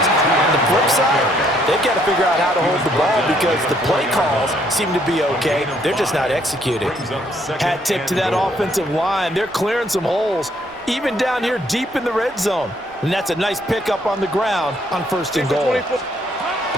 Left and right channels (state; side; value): normal; both; correlation 0.68